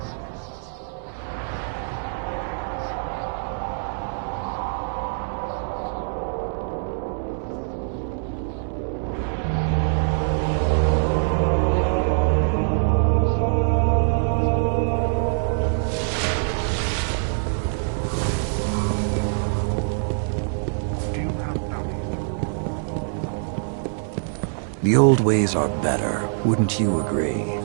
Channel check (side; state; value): left; silent; 63 dB below the other